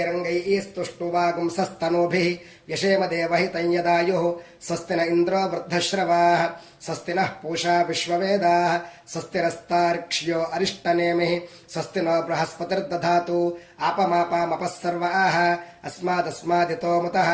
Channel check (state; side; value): identical; both; correlation 1.00